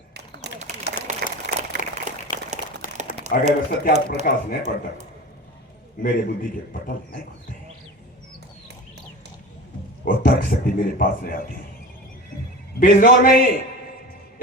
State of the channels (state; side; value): normal; both; correlation 0.32